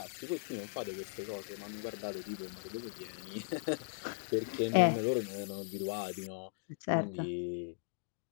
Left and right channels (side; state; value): right; silent; digital silence